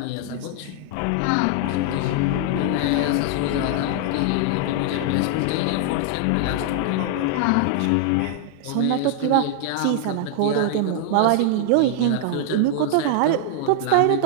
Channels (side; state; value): both; different; correlation 0.00